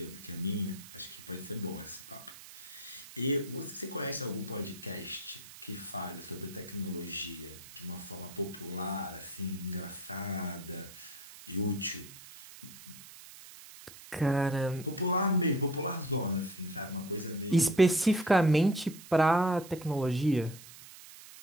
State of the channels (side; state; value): right; noise; hiss, 17 dB below the sound